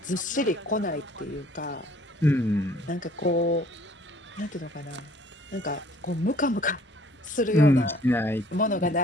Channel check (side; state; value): both; normal; correlation 0.56